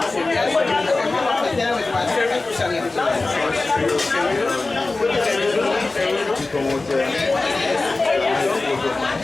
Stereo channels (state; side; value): quieter; right; 3.3 dB